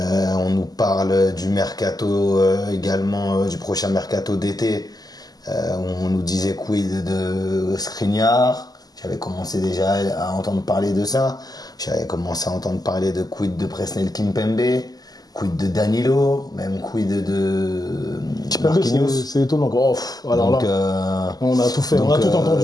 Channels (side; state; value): right; late; 0.18 ms